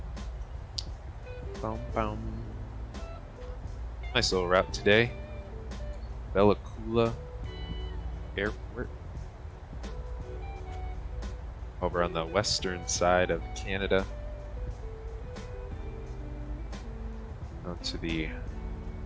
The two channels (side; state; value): both; identical; correlation 1.00